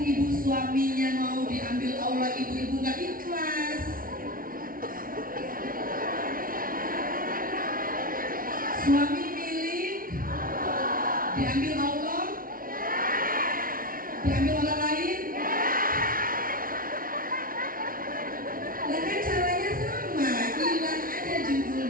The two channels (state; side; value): late; left; 0.42 ms